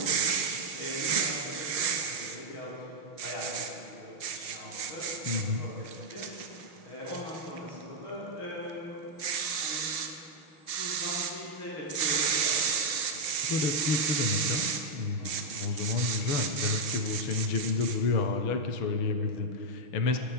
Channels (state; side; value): late; right; 6.3 ms